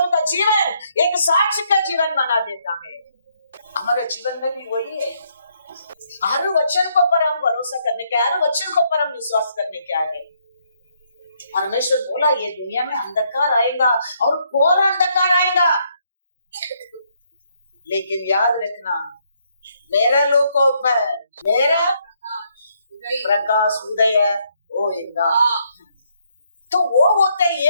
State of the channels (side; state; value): both; inverted; correlation -0.72